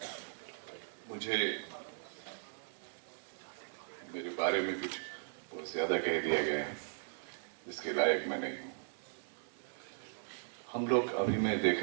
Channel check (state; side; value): silent; left; digital silence